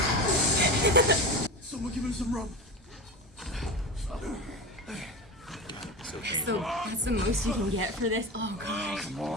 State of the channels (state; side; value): normal; both; correlation 0.25